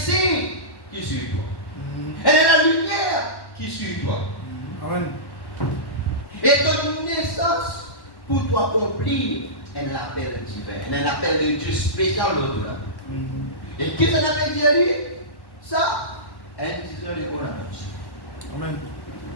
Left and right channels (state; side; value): late; right; 1.1 ms